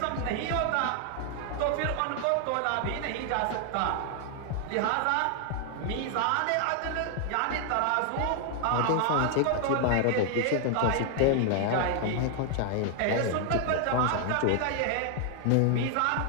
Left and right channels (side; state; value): both; different; correlation 0.00